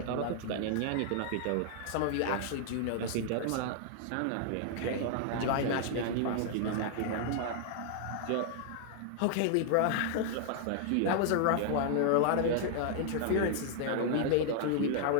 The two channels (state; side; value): different; both; correlation 0.00